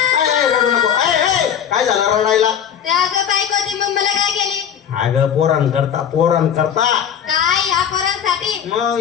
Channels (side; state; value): right; quieter; 8.8 dB